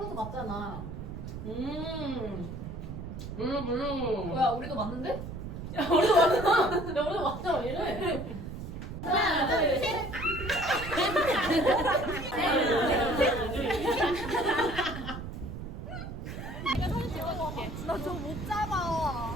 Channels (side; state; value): right; noise; rumble, 8 dB below the sound